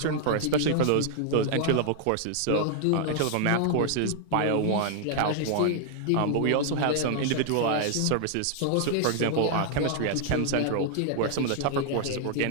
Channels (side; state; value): both; different; correlation 0.00